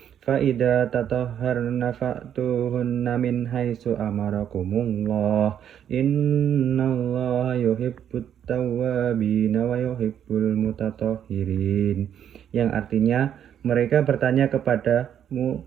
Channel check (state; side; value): quieter; left; 9.4 dB